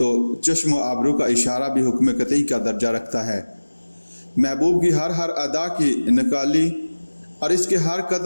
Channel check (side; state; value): both; inverted; correlation -1.00